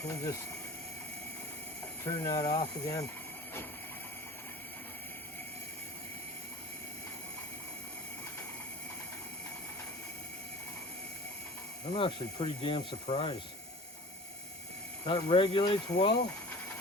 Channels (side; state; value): both; normal; correlation 0.40